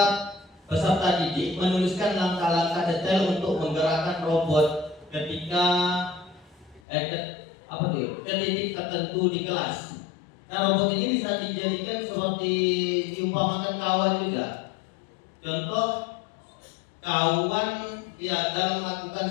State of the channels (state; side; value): drops out; right; at 6.8 s